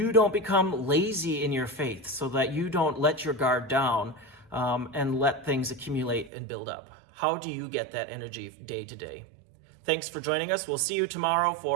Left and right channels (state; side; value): drops out; left; at 6.3 s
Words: don't become lazy in your faith, so that you don't let your guard down and let things accumulate and build up? How do you get that energy day to day? Thanks for joining us. We'll see you tomorrow